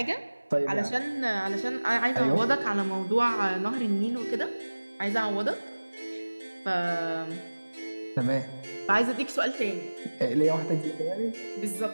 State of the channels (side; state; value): both; inverted; correlation -1.00